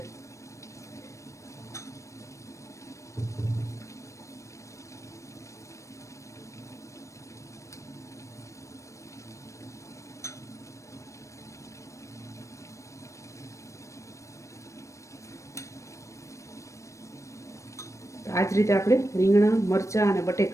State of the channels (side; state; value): right; late; 0.15 ms